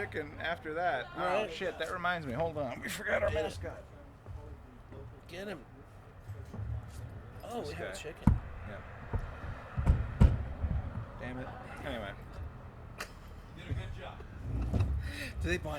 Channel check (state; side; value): identical; both; correlation 1.00